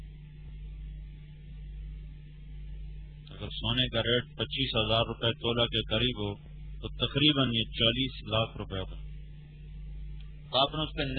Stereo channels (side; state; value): both; identical; correlation 1.00